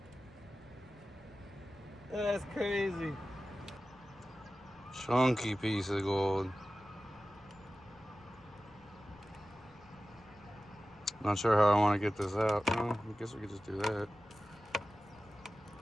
That's crazy. Chunky piece of gold. Not sure how I want to get this out. No, I guess we could just do that.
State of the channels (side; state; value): left; noise; rumble, 26 dB below the sound